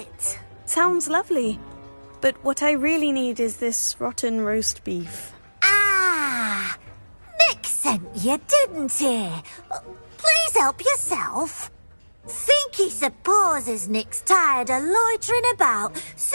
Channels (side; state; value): both; inverted; correlation -1.00